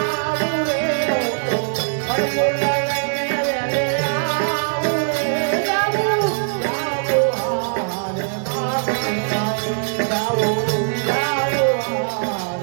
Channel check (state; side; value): silent; left; digital silence